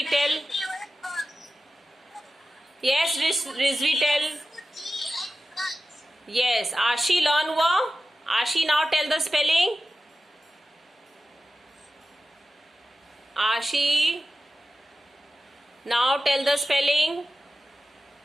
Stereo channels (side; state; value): both; normal; correlation 0.94